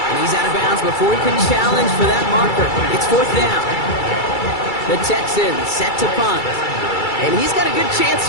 And he's out of bounds before he can challenge for that marker. It's fourth down. The Texans set to punt. And he's got a good chance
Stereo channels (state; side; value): late; right; 2.3 ms